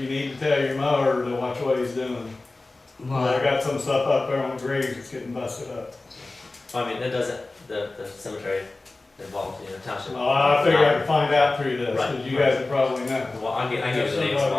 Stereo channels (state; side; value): quieter; right; 3.2 dB